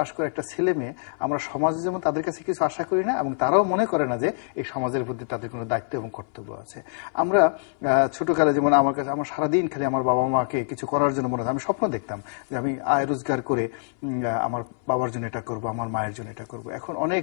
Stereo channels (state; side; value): silent; right; 61 dB below the other